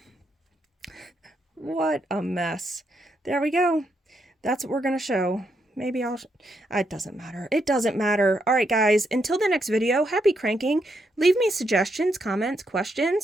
what a mess. There we go. That's what we're going to show. Maybe it doesn't matter. It doesn't matter. All right, guys, until the next video, happy cranking. Leave me suggestions, comments,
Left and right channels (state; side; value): normal; both; correlation 0.79